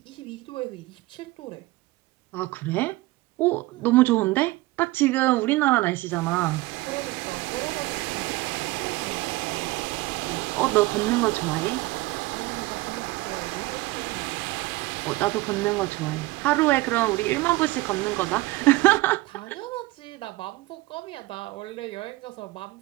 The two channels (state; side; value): quieter; left; 19.9 dB